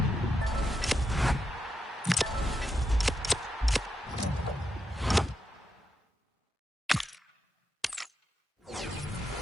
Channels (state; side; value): normal; both; correlation 0.84